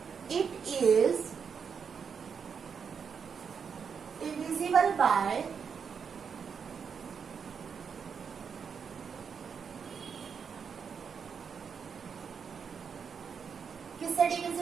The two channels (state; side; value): quieter; left; 6.5 dB